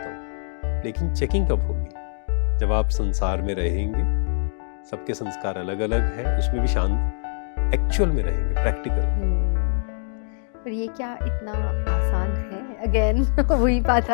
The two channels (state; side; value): silent; right; digital silence